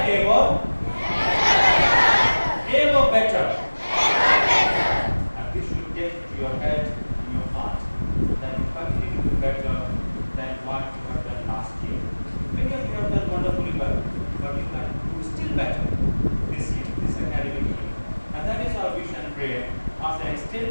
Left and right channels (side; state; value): both; inverted; correlation -1.00